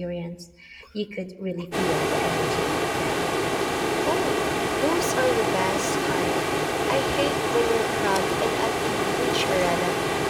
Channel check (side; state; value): both; identical; correlation 1.00